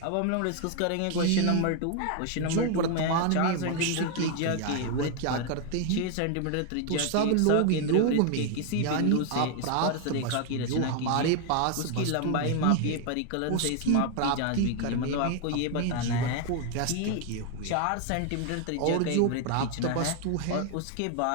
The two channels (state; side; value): different; both; correlation 0.01